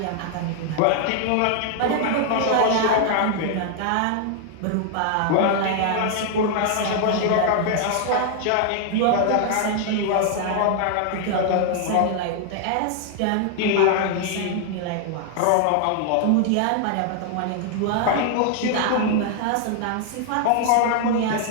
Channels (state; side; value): different; both; correlation 0.00